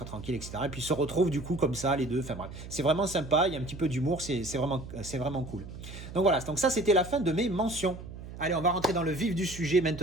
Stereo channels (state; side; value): noise; right; hum, 12 dB below the sound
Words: tranquille, etc. Et puis ils se retrouvent du coup comme ça, les deux. Enfin bref, c'est vraiment sympa. Il y a un petit peu d'humour. C'est vraiment cool. Donc voilà. Donc ça, c'était la fin de mes mentions. Allez, on va rentrer dans le vif du sujet